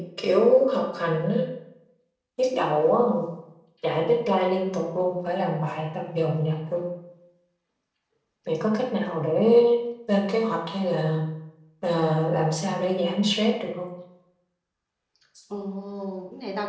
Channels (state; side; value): identical; both; correlation 1.00